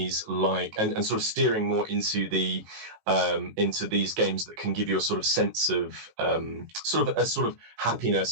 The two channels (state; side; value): late; left; 19 ms